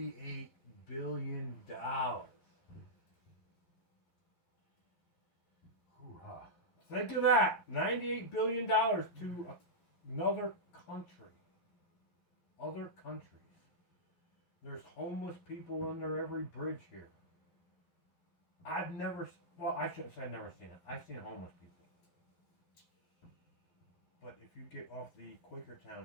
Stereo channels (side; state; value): right; late; 11 ms